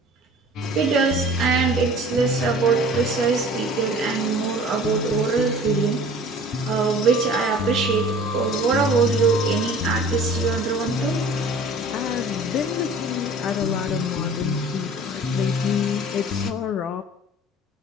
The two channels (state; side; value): normal; both; correlation 0.46